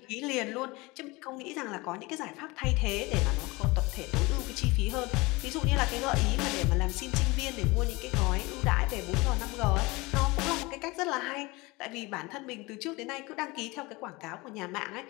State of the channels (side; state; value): right; quieter; 23.5 dB